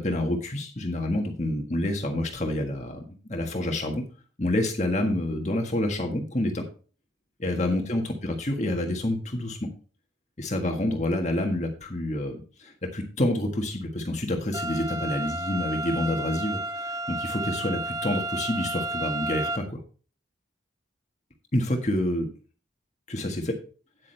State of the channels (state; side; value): normal; both; correlation 0.68